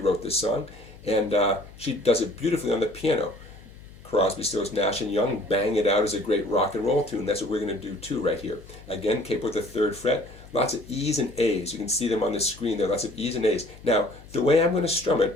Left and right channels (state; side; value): noise; left; hum, 20 dB below the sound